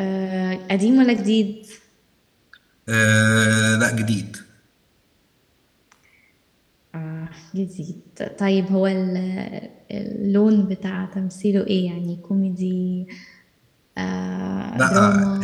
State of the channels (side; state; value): both; identical; correlation 1.00